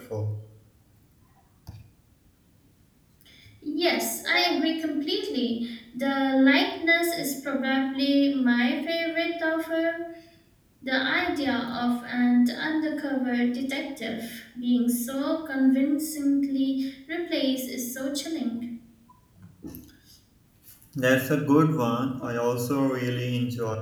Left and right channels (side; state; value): both; identical; correlation 1.00